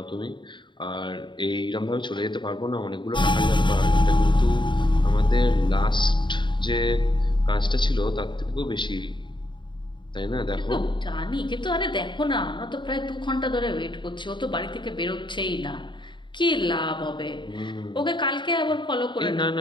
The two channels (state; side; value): late; right; 0.23 ms